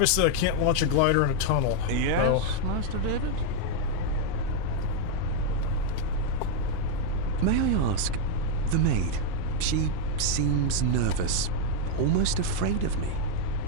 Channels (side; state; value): both; different; correlation 0.00